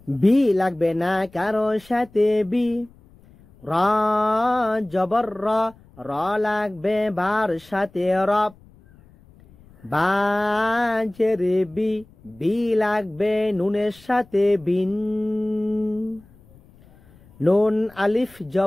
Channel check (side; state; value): left; noise; rumble, 27 dB below the sound